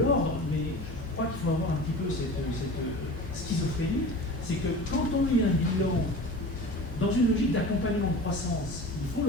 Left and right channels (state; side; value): normal; both; correlation 0.36